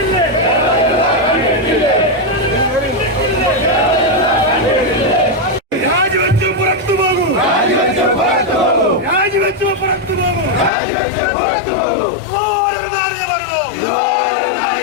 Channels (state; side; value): drops out; right; at 10.7 s